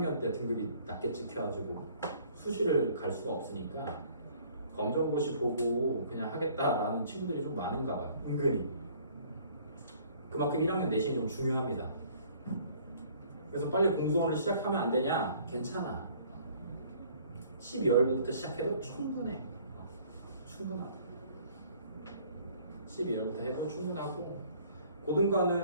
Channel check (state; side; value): inverted; both; correlation -0.57